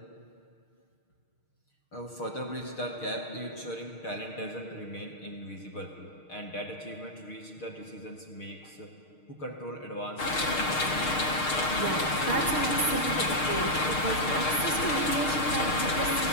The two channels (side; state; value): right; late; 6.5 ms